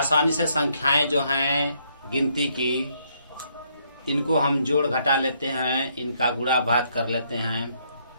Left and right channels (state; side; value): inverted; both; correlation -0.71